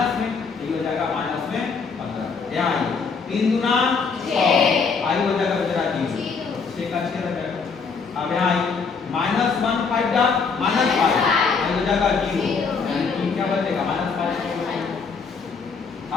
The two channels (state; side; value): quieter; right; 5.1 dB